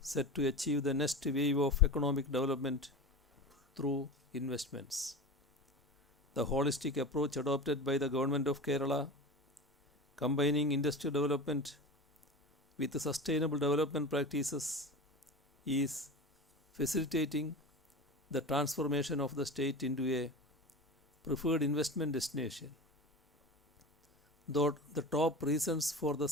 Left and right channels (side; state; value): both; normal; correlation 0.29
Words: set to achieve the next wave of economic development through investments. The holistic approach adopted by the government of Kerala, combining industrial development with sustainable development practices, is facilitating the transformation of the state into a preferred investment destination. Though the top reasons for the